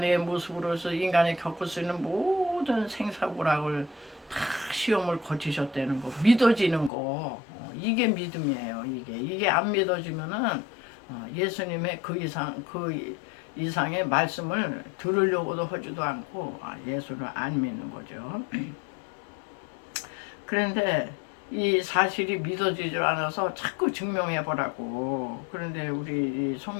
모습으로서 인간이 겪을 수 있는 모든 생사고락을 다 시험을 거치셨다는 거 믿어지는 거 이게 믿음이에요. 이게 안 믿어지면은 예수님의 그 이상의 말씀을 들으려고도 하지도 않고 예수를 안 믿는 거죠. 그런데 이 사실이 믿어지질 않아서 자꾸 증명해보라고. 그런데 우리 이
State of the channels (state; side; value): drops out; right; at 6.9 s